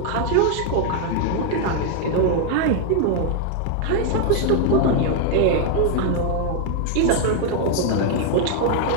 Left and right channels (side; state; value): both; different; correlation 0.00